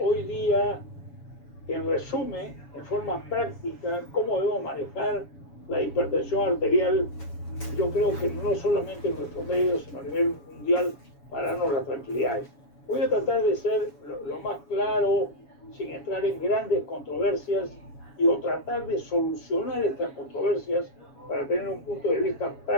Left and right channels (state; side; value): late; right; 7.1 ms